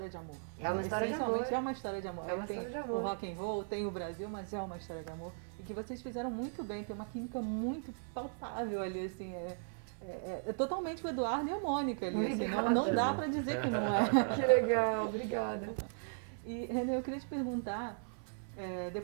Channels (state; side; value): silent; left; 53 dB below the other